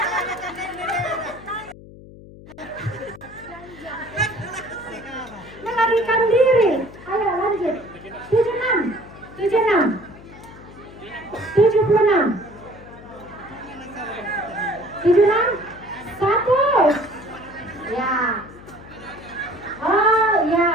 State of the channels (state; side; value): noise; left; hum, 18 dB below the sound